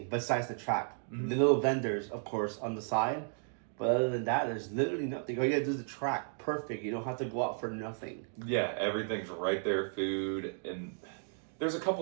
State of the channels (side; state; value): left; silent; 55 dB below the other